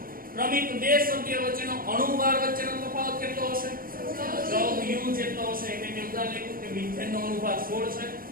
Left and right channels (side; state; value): left; late; 0.42 ms